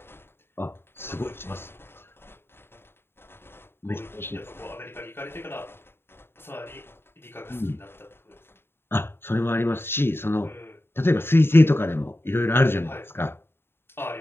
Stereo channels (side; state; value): right; late; 0.11 ms